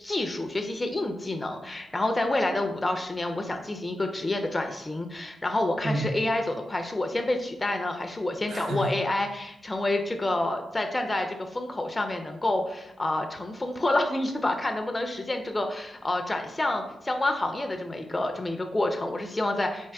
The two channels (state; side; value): normal; both; correlation 0.93